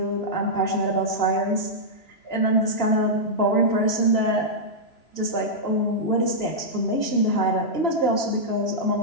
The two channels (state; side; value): late; right; 3.0 ms